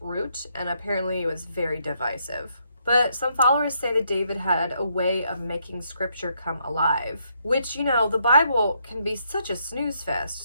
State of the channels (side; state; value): both; inverted; correlation -0.75